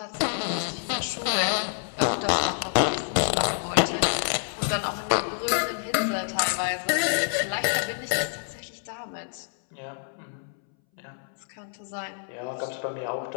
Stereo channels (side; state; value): right; silent; 60 dB below the other